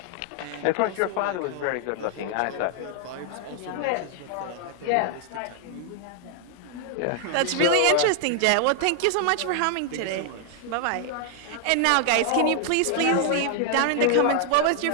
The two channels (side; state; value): both; different; correlation 0.00